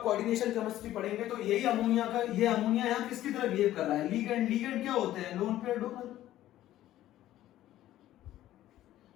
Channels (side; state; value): right; quieter; 13.7 dB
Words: कोऑर्डिनेशन केमिस्ट्री पढ़ेंगे तो यही अमोनिया का, ये अमोनिया यहां किसकी तरह बिहेव कर रहा है? लिगेंड। लिगेंड क्या होते हैं? Loan pair donor.